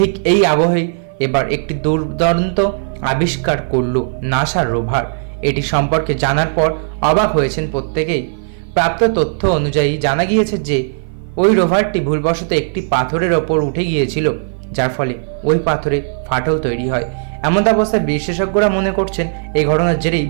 এই আবহেই এবার একটি দুর্দান্ত আবিষ্কার করল নাসার রোভার। এটি সম্পর্কে জানার পর অবাক হয়েছেন প্রত্যেকেই। প্রাপ্ত তথ্য অনুযায়ী জানা গিয়েছে যে ওই রোভারটি ভুলবশত একটি পাথরের ওপর উঠে গিয়েছিল, যার ফলে ওই পাথরে ফাটল তৈরি হয়। এমন অবস্থায় বিশেষজ্ঞরা মনে করছেন এই ঘটনার জেরেই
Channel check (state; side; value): silent; left; 55 dB below the other